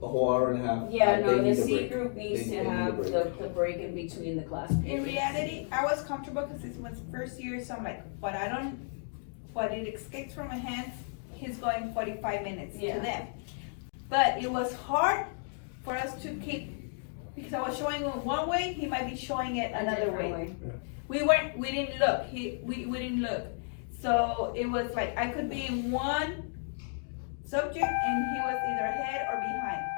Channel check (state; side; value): silent; right; 56 dB below the other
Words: a whole hour and a half. Yeah, they no, the need a C break. group needs They to need a have break. the break in between the class in periods. reality, I was comfortable because this was first year, so I'm like, what it escapes from my hands, he's going 45 minutes to Yeah. them. But it was hard for us to keep, because I was showing him one way, he might be showing it A another different way. We didn't look, we didn't look. So it was like, I could be in one subject and he was either ahead or behind.